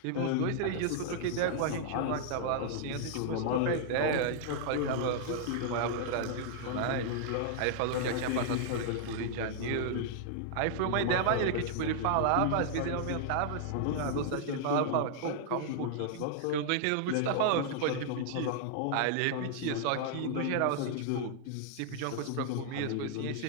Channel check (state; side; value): different; both; correlation -0.01